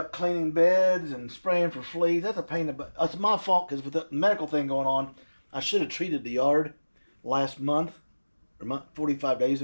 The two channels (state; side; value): inverted; both; correlation -1.00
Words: cleaning beds and spraying for fleas. That's a pain in the butt. It's my fault because with the medical thing going on, I should have treated the yard last month, or 45 days